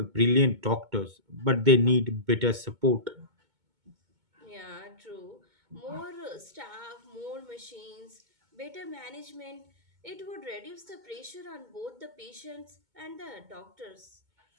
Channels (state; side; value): late; left; 2.2 ms